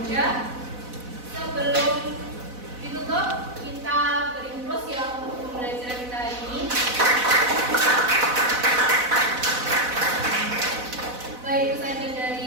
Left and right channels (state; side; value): late; left; 4.0 ms